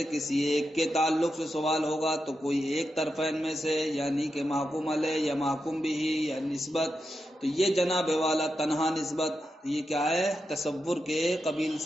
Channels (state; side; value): normal; both; correlation 0.88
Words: کسی ایک کے تعلق سے سوال ہوگا تو کوئی ایک طرفین میں سے یعنی کہ محکوم علیہ یا محکوم بھی یا نسبت، تو یہ جناب والا تنہا نسبت یہ کیا ہے؟ تصور کے قبیل